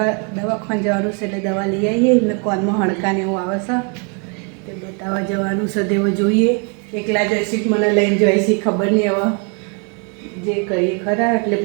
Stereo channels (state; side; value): quieter; left; 36.1 dB